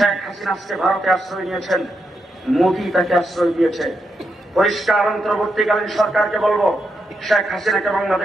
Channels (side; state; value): both; normal; correlation 0.83